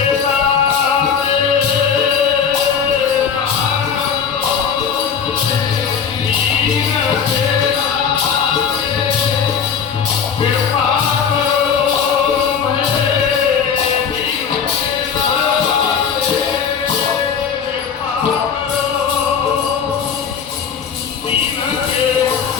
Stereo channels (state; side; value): quieter; right; 7.0 dB